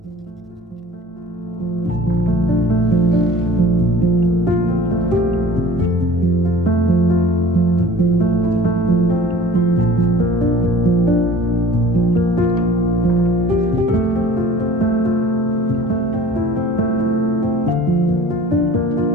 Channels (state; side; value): normal; both; correlation 0.45